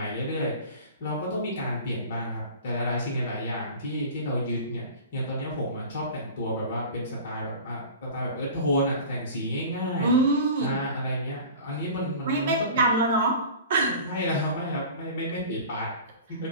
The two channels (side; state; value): both; inverted; correlation -0.38